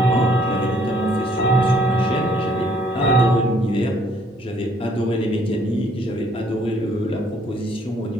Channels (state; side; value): normal; both; correlation 0.63